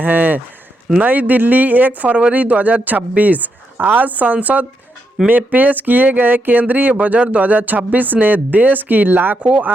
हैं। नई दिल्ली 1 फरवरी 2026। आज संसद में पेश किए गए केंद्रीय बजट 2026 ने देश की लाखों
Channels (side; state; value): both; normal; correlation 0.81